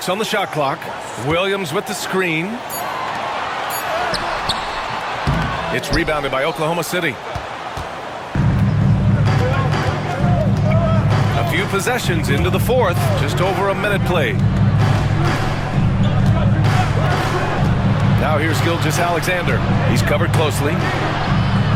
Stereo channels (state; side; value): identical; both; correlation 1.00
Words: on the shot clock. Williams with the screen. It's rebounded by Oklahoma City. A few possessions into the fourth. Just over a minute played. Now here's Gilgeous-Alexander. He's covered closely.